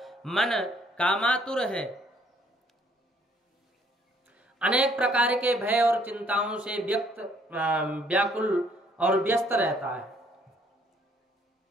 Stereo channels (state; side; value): normal; both; correlation 0.64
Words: मन कामातुर है। अनेक प्रकार के भय और चिंताओं से व्याकुल और व्यस्त रहता है।